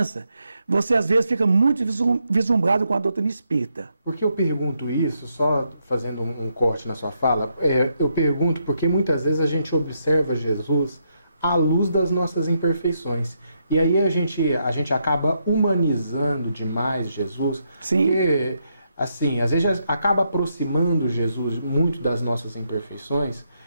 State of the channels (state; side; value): inverted; both; correlation -0.79